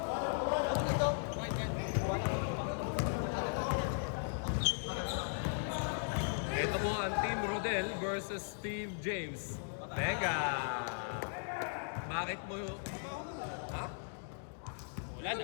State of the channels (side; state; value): right; silent; digital silence